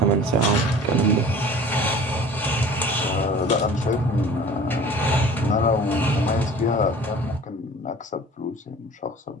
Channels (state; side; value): normal; both; correlation 0.45